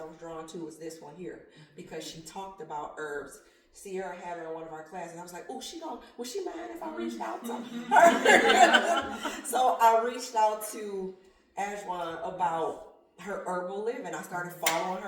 was drawn to was this one here because she talked about herbs. Sierra had her in one of our classes. I was like, oh, would she mind if I reached out to her? So I reached out to Ajwan about her herbal living. I started following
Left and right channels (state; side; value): identical; both; correlation 1.00